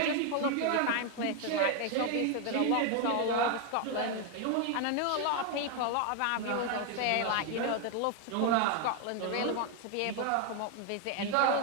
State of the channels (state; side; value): different; both; correlation 0.01